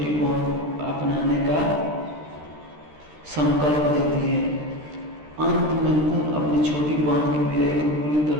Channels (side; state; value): left; late; 13 ms